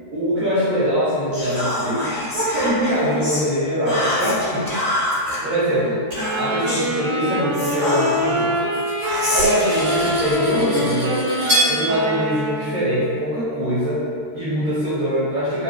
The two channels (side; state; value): left; late; 13 ms